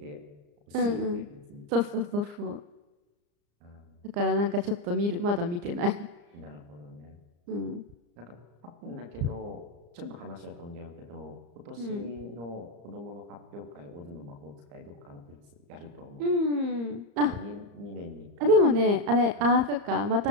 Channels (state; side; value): late; left; 34 ms